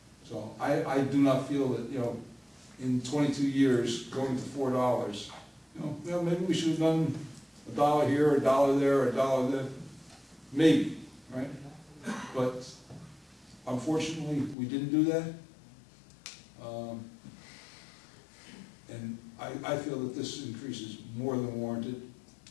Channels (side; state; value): right; drops out; at 14.6 s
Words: So I do not feel that, you know, in 22 years, going to $4, you know, maybe we should have done $1 here, $1 there, $1 there, maybe, right? But unfortunately, we didn't do that. And I feel that this increase is more than warranted.